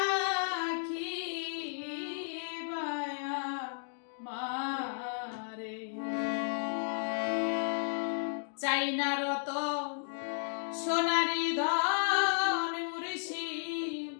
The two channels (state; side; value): silent; right; digital silence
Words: বায়া মারে চাই না রত সোনারি ধন মুর্শি